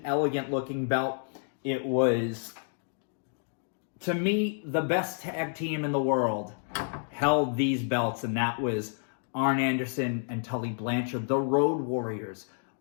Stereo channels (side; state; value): right; silent; 58 dB below the other